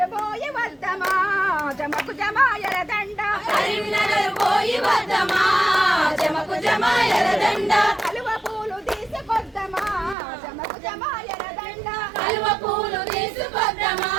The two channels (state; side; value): drops out; left; at 10.2 s